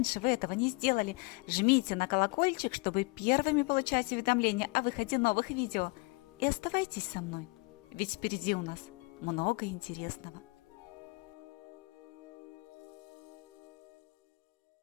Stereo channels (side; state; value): right; quieter; 27.4 dB